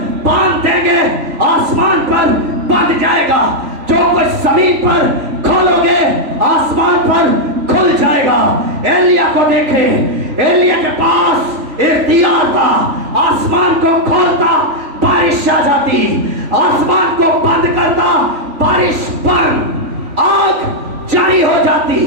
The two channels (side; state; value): left; late; 3.5 ms